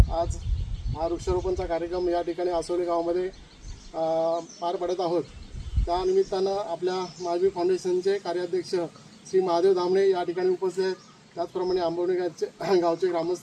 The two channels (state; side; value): identical; both; correlation 1.00